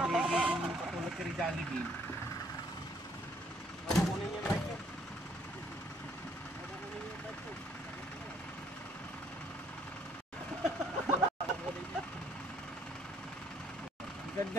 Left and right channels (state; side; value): normal; both; correlation 0.65